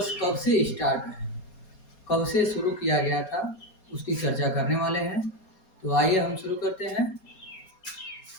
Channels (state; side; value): late; right; 4.3 ms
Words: कब से स्टार्ट है, कब से शुरू किया गया था, उसकी चर्चा करने वाले हैं। तो आइए हम शुरू करते हैं।